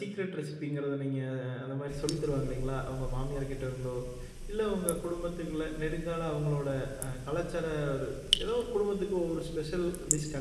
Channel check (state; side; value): identical; both; correlation 1.00